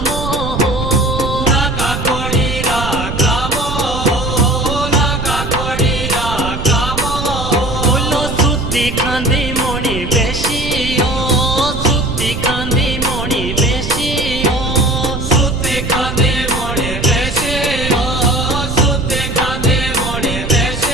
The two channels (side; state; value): right; noise; rumble, 6 dB below the sound